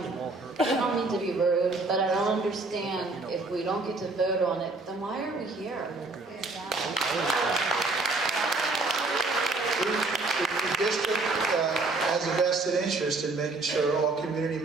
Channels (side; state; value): left; quieter; 3.4 dB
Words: I don't mean to be rude, but I don't understand if we don't get to vote on it, then why are we here? The district has a vested interest in making sure all community